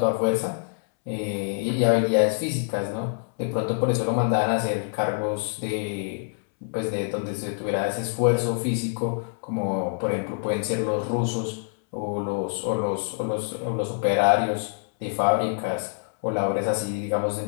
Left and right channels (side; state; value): right; silent; 61 dB below the other